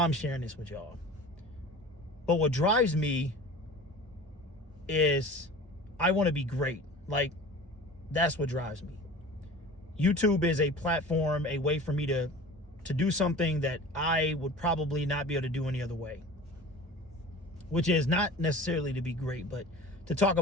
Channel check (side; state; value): both; normal; correlation 0.39